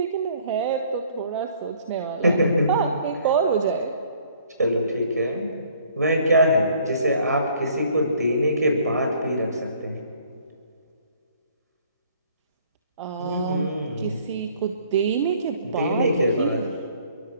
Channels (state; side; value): inverted; both; correlation -0.59